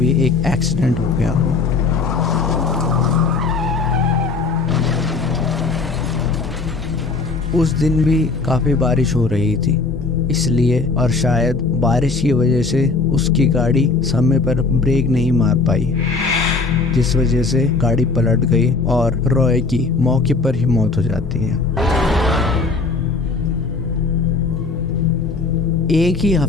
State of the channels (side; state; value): right; quieter; 4.1 dB